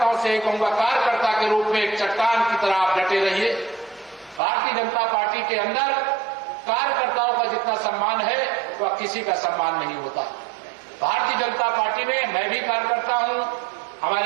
से कहूंगा, कार्यकर्ता के रूप में एक चट्टान की तरह आप डटे रहिए। भारतीय जनता पार्टी के अंदर कार्यकर्ताओं का जितना सम्मान है वह किसी का सम्मान नहीं होता। भारतीय जनता पार्टी में मैं भी कार्यकर्ता हूं,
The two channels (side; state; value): left; drops out; at 4.4 s